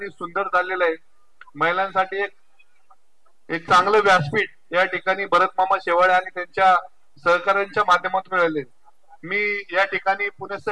सुंदर झालेला आहे। महिलांसाठी एक चांगलं व्यासपीठ या ठिकाणी भरत मामा शेवाळे आणि त्यांच्या सहकार्यांच्या माध्यमातून मिळाले। मी या ठिकाणी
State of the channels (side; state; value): both; identical; correlation 1.00